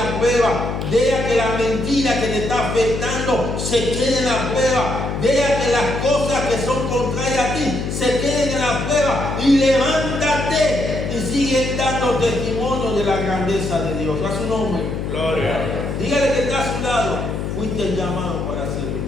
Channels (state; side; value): noise; left; hum, 3 dB below the sound